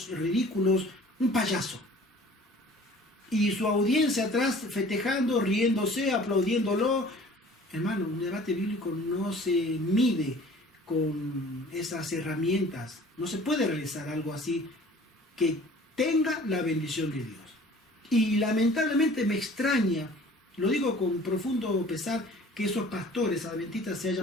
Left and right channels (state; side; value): normal; both; correlation 0.49